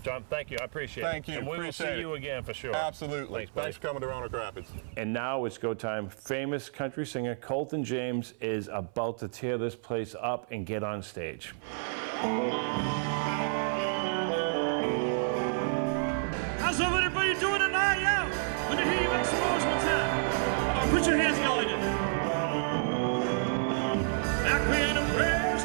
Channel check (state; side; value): silent; left; 58 dB below the other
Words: John, thank you. I appreciate it. Thank you. And we will see you again for sure. Absolutely. Thanks for coming to Roanoke Rapids. And now it's go time. Famous country singer Colton James is about to tear this place up and get on stage. How's everybody doing tonight? Yeah. Let me hear you make some noise one time. Put your hands together. Back when the prayer